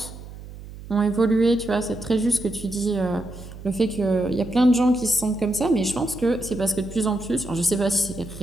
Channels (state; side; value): noise; right; hum, 14 dB below the sound